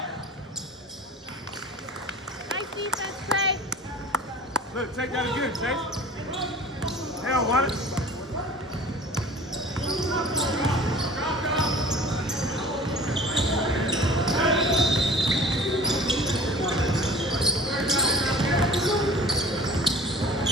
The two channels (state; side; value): normal; both; correlation 0.42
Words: Nice defense, Trey. Look, take that again, Chase. They don't want it.